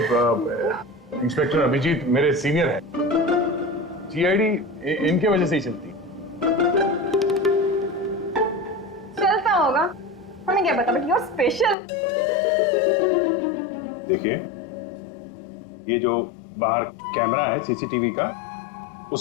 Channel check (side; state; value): right; drops out; at 11.8 s